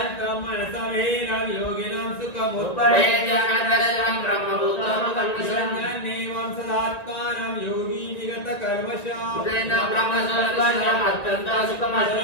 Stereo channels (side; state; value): right; late; 1.9 ms